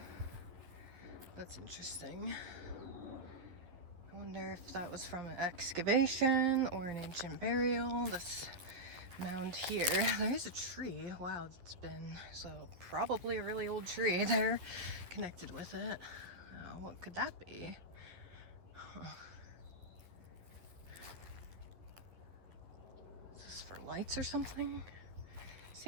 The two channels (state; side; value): late; left; 11 ms